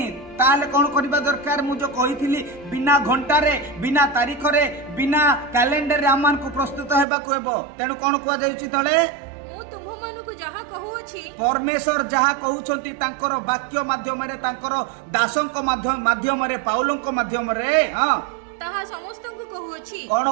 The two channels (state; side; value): drops out; left; at 7.1 s